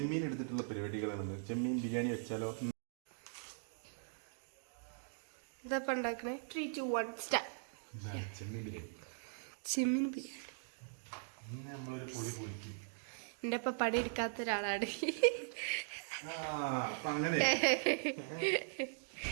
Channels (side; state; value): left; silent; digital silence